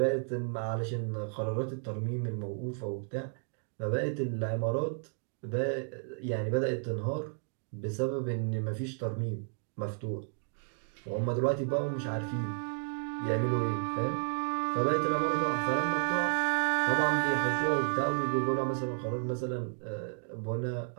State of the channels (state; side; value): silent; left; digital silence